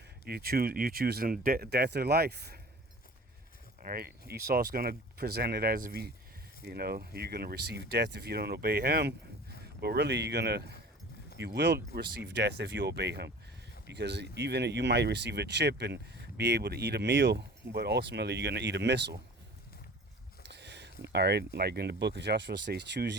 choosing death or life. All right, Esau's going to present it as if you're going to receive death if you don't obey him, but really you will receive death if you obey him, because even you might receive a chip and be able to eat a meal, but ultimately you're going to eat a missile. All right, like in the book of Joshua says, choose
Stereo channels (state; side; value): normal; both; correlation 0.43